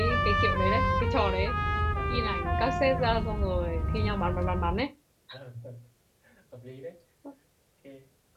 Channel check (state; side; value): identical; both; correlation 1.00